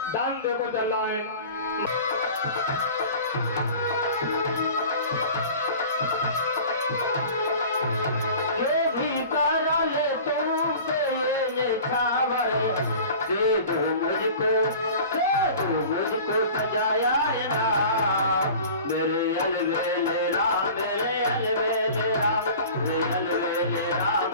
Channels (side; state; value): both; inverted; correlation -0.41